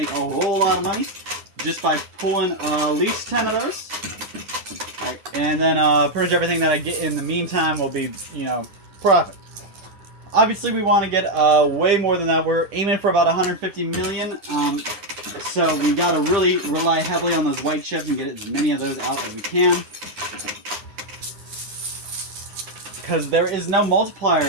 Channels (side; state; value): left; late; 10 ms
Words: a whole lot of money just by pulling at least 10 of those. Right, and then pretty much everything that I get in the meantime will be, profit. Obviously, we want to get way more than that. We're aiming for about 150 million. So we got to really rely heavily on those white chips and get as many of those out as we can. Because there is no multiplier.